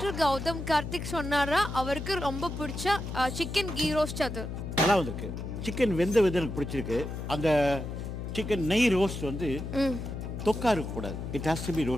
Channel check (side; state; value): left; noise; hum, 6 dB below the sound